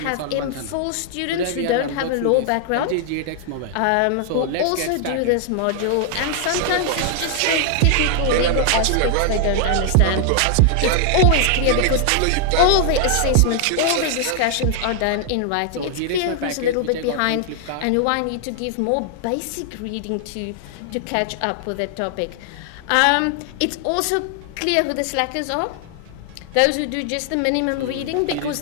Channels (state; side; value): different; both; correlation 0.00